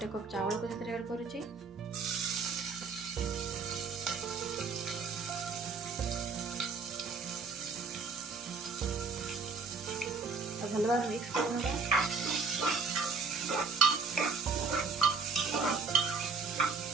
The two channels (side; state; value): left; quieter; 4.7 dB